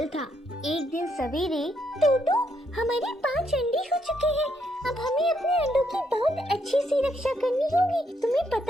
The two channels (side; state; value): both; normal; correlation 0.75